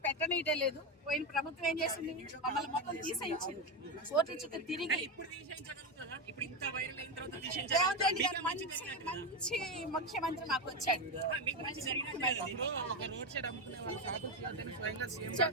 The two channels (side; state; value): both; normal; correlation 0.12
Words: పెట్టనీయటే లేదు. పోయిన ప్రభుత్వం ఏం చేసింది? మమ్మల్ని మొత్తం తీసేయించింది. కోర్టు చుట్టూ తిరిగి రేవంత్ రెడ్డి గారు మంచి ముఖ్యమంత్రి మాకు వచ్చాడు.